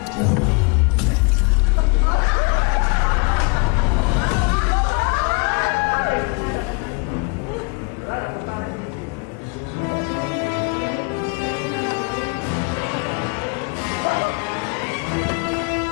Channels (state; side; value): quieter; right; 32.2 dB